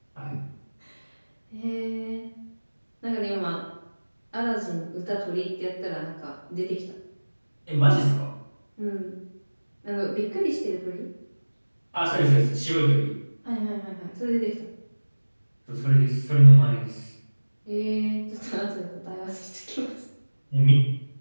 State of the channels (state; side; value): inverted; both; correlation -1.00